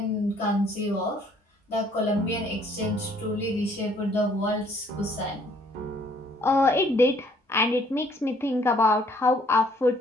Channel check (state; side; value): normal; both; correlation 0.62